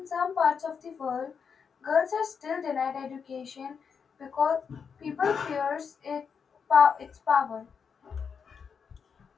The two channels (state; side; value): quieter; right; 6.4 dB